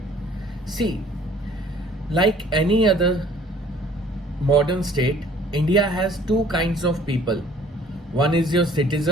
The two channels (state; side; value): normal; both; correlation 0.55